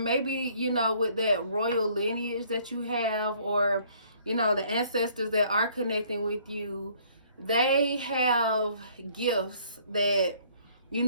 you know, with that royal lineage that you have, or, you know, the ancestors that are connecting with you, they have gifts that, you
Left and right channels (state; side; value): inverted; both; correlation -0.60